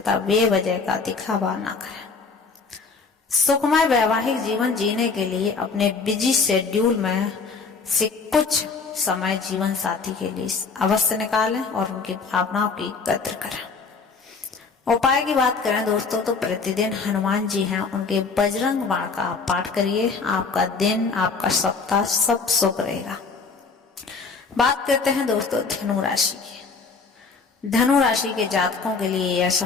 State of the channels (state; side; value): quieter; right; 4.7 dB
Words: बेवजह का दिखावा न करें। सुखमय वैवाहिक जीवन जीने के लिए अपने बिजी शेड्यूल में से कुछ समय जीवन साथी के लिए अवश्य निकालें और उनकी भावनाओं की कद्र करें। उपाय की बात करें दोस्तों तो प्रतिदिन हनुमान जी हैं, उनके बजरंग बाण का पाठ करिए, आपका दिन आपका सप्ताह सब शुभ रहेगा। बात करते हैं दोस्तों धनु राशि की। धनु राशि के जातकों के लिए यह